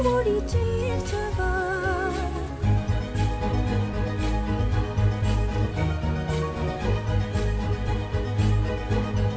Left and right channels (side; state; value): both; identical; correlation 1.00